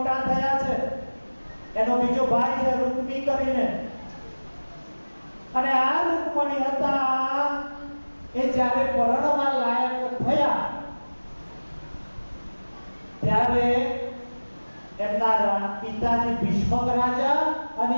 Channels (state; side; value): inverted; both; correlation -1.00